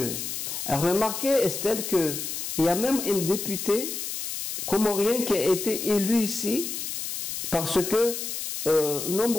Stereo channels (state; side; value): noise; left; hiss, 5 dB below the sound